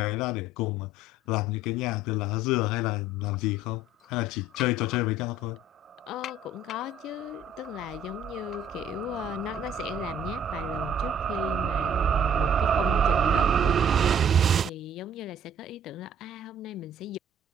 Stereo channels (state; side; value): normal; both; correlation 0.55